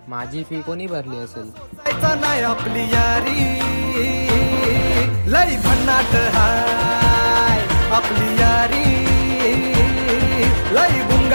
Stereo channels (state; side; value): inverted; both; correlation -1.00